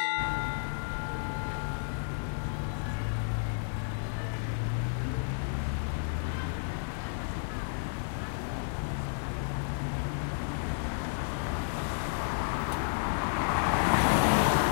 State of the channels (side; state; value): right; silent; digital silence